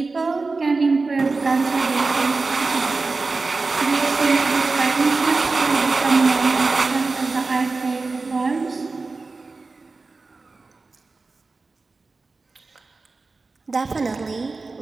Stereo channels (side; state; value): left; quieter; 3.8 dB